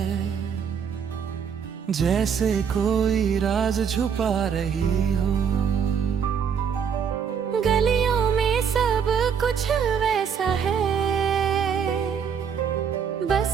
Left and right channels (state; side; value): quieter; left; 7.2 dB